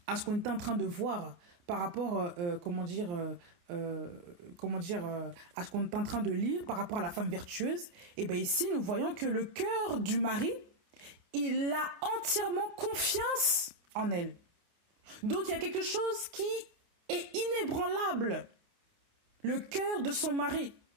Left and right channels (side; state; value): left; late; 29 ms